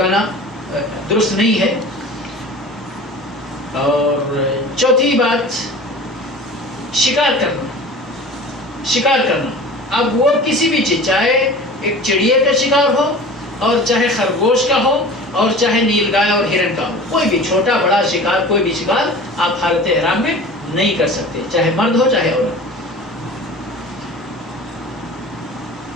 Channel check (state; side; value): normal; both; correlation 0.39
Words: درست نہیں ہے. اور چوتھی بات شکار کرنا. شکار کرنا اب وہ کسی بھی چیز، چاہے ایک چڑیے کا شکار ہو اور چاہے خرگوش کا ہو اور چاہے نیل گائے اور ہرن کا ہو، کوئی بھی چھوٹا بڑا شکار، کوئی بھی شکار آپ حالت احرام میں نہیں کر سکتے، چاہے مرد ہو چاہے عورت.